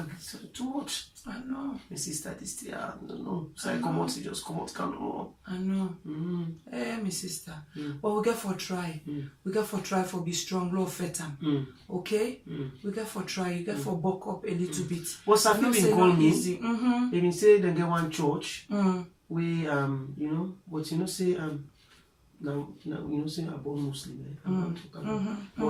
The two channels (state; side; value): identical; both; correlation 1.00